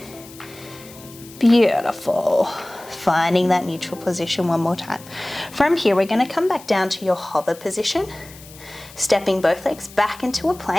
Beautiful. Finding that neutral position one more time. From here, we're going to come back down to your hover position, stepping both legs back into a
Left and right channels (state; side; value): noise; left; hiss, 20 dB below the sound